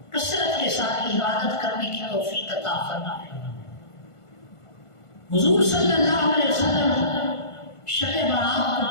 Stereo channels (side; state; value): right; late; 1.5 ms